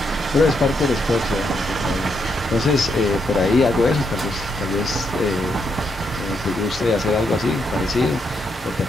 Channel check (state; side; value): normal; both; correlation 0.78